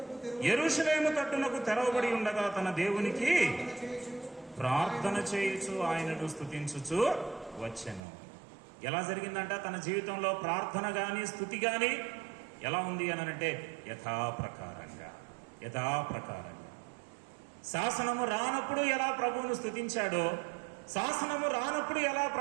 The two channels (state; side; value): drops out; left; at 8.0 s